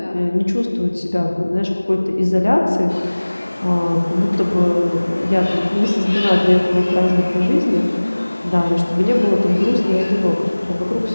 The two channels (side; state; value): both; inverted; correlation -1.00